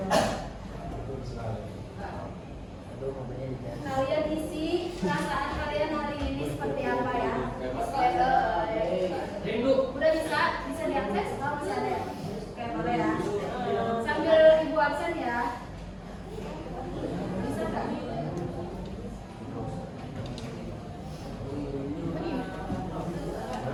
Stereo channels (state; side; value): identical; both; correlation 1.00